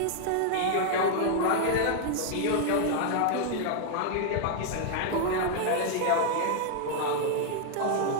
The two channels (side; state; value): both; different; correlation 0.00